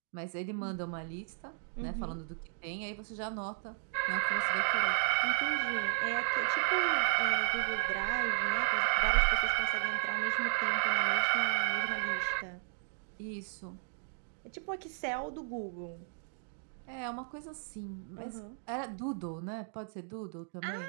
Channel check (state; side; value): silent; left; digital silence